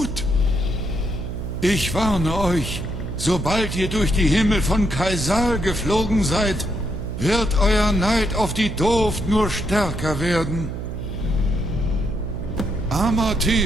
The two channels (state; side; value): noise; right; hum, 6 dB below the sound